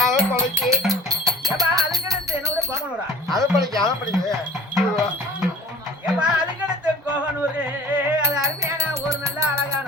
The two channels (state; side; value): normal; both; correlation 0.43